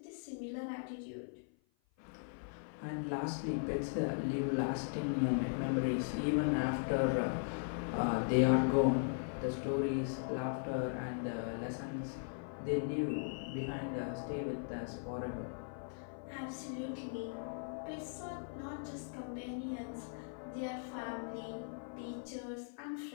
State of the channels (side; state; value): right; silent; 52 dB below the other